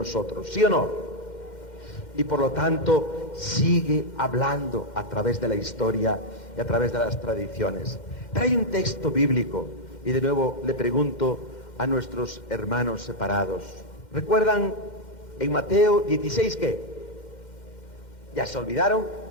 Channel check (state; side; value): late; right; 2.1 ms